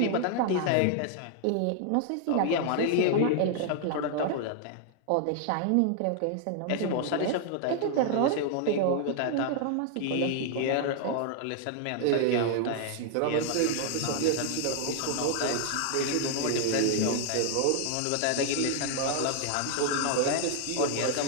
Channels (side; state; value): both; different; correlation 0.00